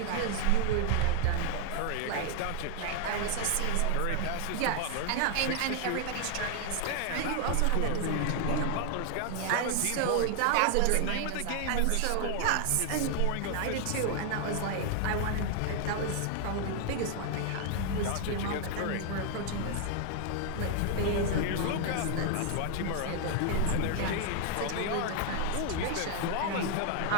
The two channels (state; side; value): different; both; correlation 0.00